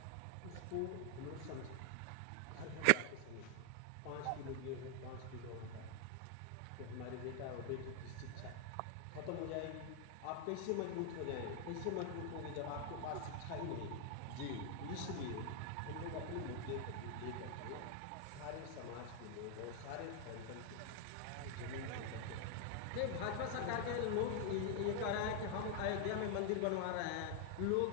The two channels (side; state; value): both; different; correlation 0.00